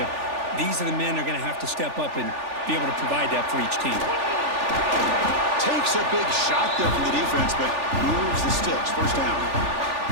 these are the men that are going to have to step up and be able to provide that for each team. Takes a big shot there from the defense, but moves the sticks. First down.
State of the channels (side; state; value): left; late; 3.4 ms